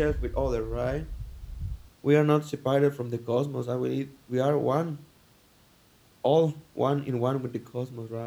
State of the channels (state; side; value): identical; both; correlation 1.00